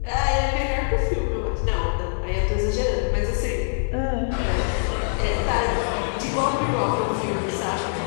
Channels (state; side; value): silent; right; digital silence